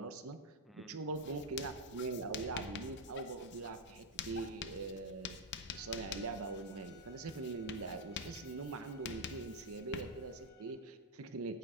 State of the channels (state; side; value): normal; both; correlation 0.02